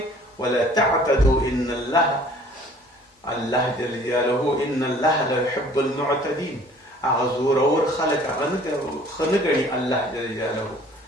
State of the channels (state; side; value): normal; both; correlation 0.53